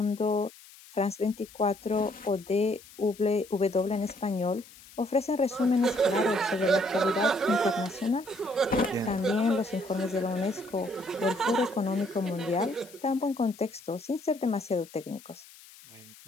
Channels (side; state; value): left; noise; hiss, 21 dB below the sound